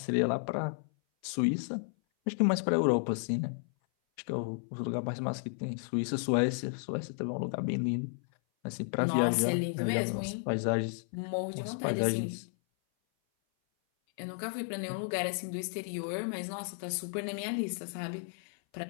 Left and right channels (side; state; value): right; silent; 56 dB below the other